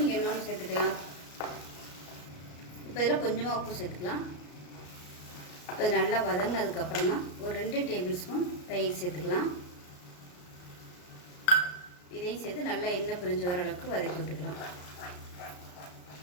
இன்னொன்று சேர்த்துக்கலாம். இப்போ இதில் கொஞ்சமாக உப்பு சேர்த்துக்கலாம். இப்போ இது நல்லா வதங்கினதுக்கப்புறமா ஒரு 2 டேபிள் ஸ்பூன் தயிர் சேர்த்துக்கலாம். இதையும் சேர்த்து நல்லா எண்ணெய் பிரிஞ்சு வர அளவுக்கு வதக்கி விட்டுக்கலாம்.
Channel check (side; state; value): right; late; 34 ms